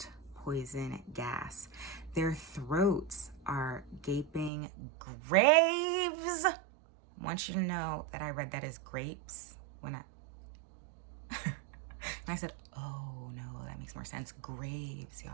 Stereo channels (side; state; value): left; drops out; at 4.5 s